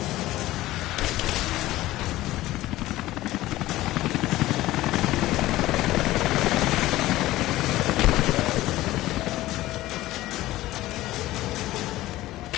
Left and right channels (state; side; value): quieter; right; 16.5 dB